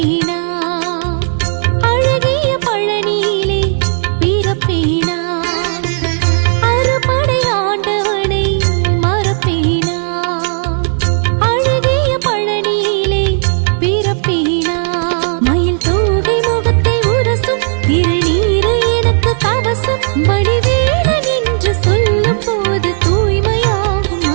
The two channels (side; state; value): left; silent; digital silence